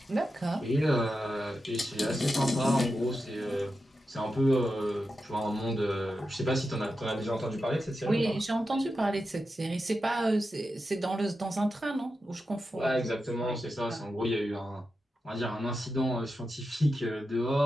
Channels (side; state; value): both; normal; correlation 0.89